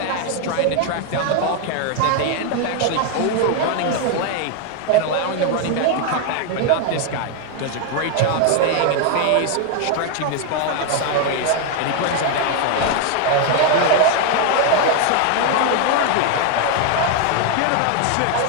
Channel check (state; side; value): different; both; correlation 0.01